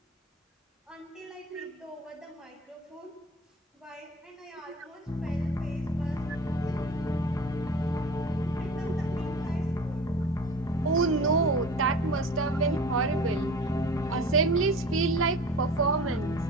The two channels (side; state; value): both; normal; correlation 0.39